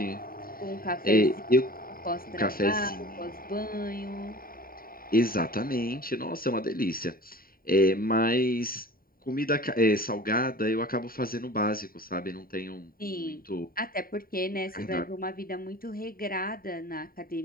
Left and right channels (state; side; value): late; right; 0.43 ms